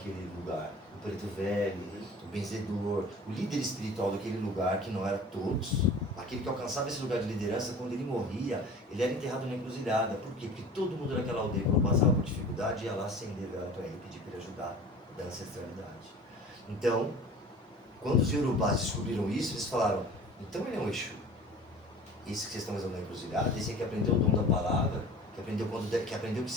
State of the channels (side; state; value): both; normal; correlation 0.42